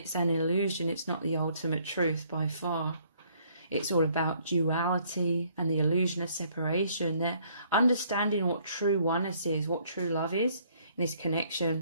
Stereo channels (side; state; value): both; inverted; correlation -0.65